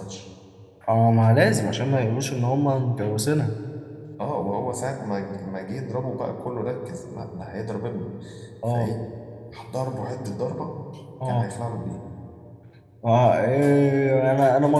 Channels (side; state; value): both; identical; correlation 1.00